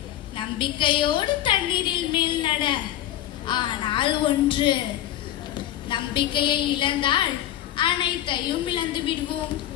நம்பிக்கையோடு தண்ணீரில் மேல் நட. ஆனால் ஒன்று, நம்பிக்கையை இழந்தால் அனைத்தையும் இழந்து விடுவோம்.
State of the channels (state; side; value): quieter; right; 12.6 dB